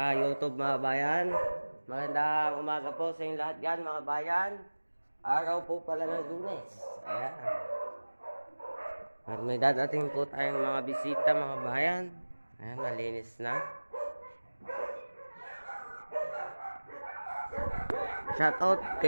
YouTube mga bayan. Magandang umaga po sa inyong lahat yan mga bayan. Araw po pala ng Lunes. Ayan. At may dadating po tayong mga bisita mga bayan. Ayan, malinis na. Shoutout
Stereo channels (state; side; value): inverted; both; correlation -1.00